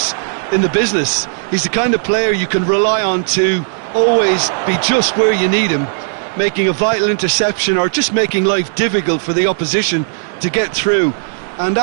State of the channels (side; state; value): left; silent; 63 dB below the other